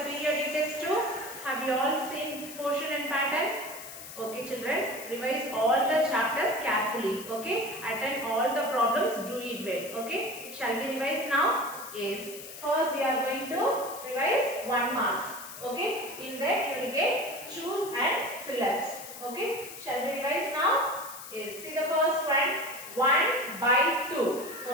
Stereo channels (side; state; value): left; noise; hiss, 13 dB below the sound